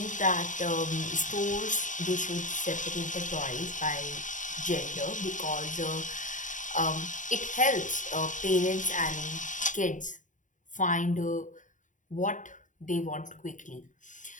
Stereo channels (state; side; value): late; right; 0.37 ms